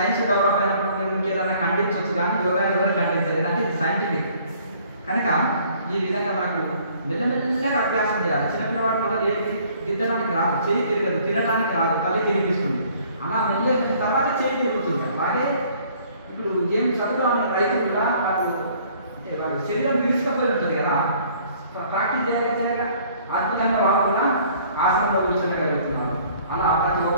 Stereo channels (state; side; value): inverted; both; correlation -0.57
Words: డెవలప్ అయినప్పుడు మీరు ఇంకేదన్నా ఖండించవచ్చు, కానీ యోగా ఎవరు ఖండించలేదు అంటే ఇది సైంటిఫిక్. కనుక ఈ విధంగా మనకు మెల్లమెల్లగా అభ్యాసం చేయాలి. చిన్నపిల్లవాడు మళ్ళీ దిద్దడానికి రాదు, చేయి తిరగదు, తినడానికి రాదు, తల్లి తిరిగిస్తుంది. అలా మెల్లగా తర్వాత చేయి తిరుగుతుంది. అలాగే ఇప్పుడు ఏం చదువు అనే రైతులు కూడా వాళ్ళ శరీరం విరుచుకపోయి ఉంటుంది కదా, ప్రాక్టీస్ చేయగా అద్భుతంగా వాళ్ళు కూడా ఆసనంలో కూర్చోగలుగుతున్నారు. అలా ప్రతి